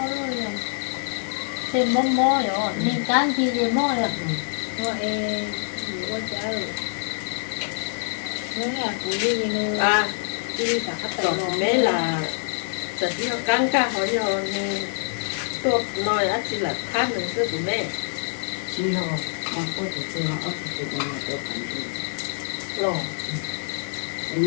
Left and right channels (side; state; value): right; silent; digital silence